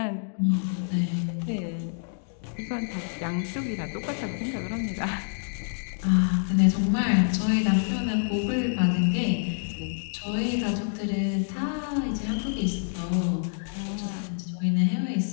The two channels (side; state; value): right; silent; digital silence